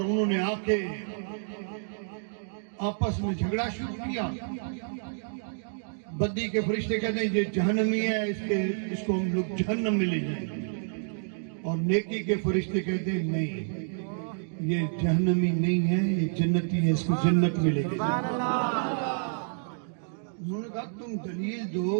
نے آ کے آپس میں جھگڑا شروع کیا. بدی کے فرشتے کہتے ہیں یہ جہنمی ہے, اس کو ہم لوگ جہنم میں لے جائیں گے, اور نیکی کے فرشتے کہتے ہیں نہیں یہ جہنمی نہیں ہے, یہ جنتی ہے, اس کو جنت میں لے جائیں گے. انہوں نے کہا تم دلیل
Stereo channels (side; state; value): left; silent; digital silence